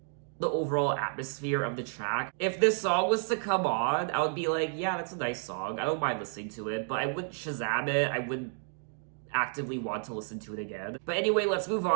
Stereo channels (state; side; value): silent; left; 57 dB below the other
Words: the overall atmosphere of the track. If this song was to come on, I would be like, yeah, that's a nice song. I don't mind listening to it, but I wouldn't Shazam it. I wouldn't actively want to listen to it again. But anyway, let's move